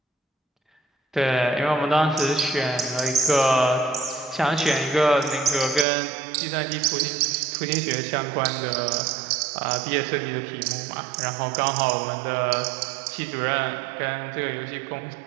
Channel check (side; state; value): left; drops out; at 5.9 s